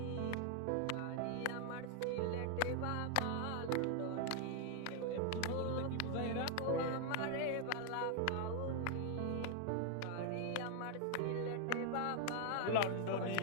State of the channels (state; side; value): different; both; correlation 0.00